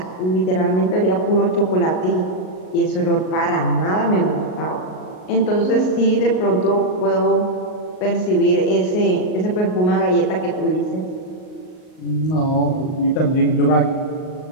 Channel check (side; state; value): right; late; 38 ms